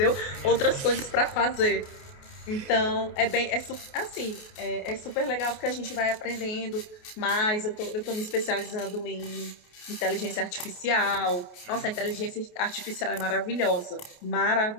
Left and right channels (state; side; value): late; right; 28 ms